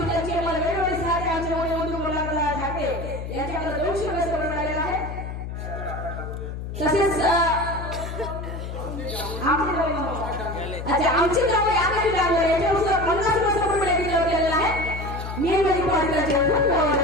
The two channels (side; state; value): left; noise; hum, 7 dB below the sound